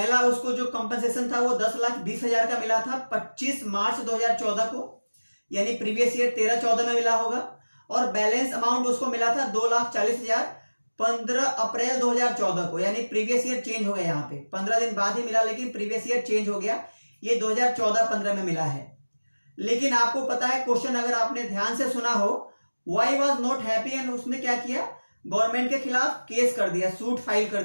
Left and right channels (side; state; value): both; inverted; correlation -1.00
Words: उसको जो कंपनसेशन था वो 10,20,000 का मिला था 25 मार्च 2014 को, यानी प्रीवियस ईयर 13-14 में मिला होगा। और बैलेंस अमाउंट उसको मिला था 2,40,000 15 अप्रैल 2014 को, यानी प्रीवियस ईयर चेंज हो गया। यहाँ पे 15 दिन बाद ही मिला, लेकिन प्रीवियस ईयर चेंज हो गया। ये 2014-15 में मिला है। लेकिन आपको पता है क्वेश्चन अगर आपने ध्यान से सुना हो, why was not happy, and उसने क्या किया? गवर्नमेंट के खिलाफ केस कर दिया, सूट फाइल कर